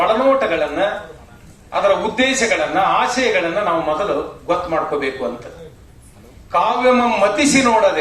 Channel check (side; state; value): both; identical; correlation 1.00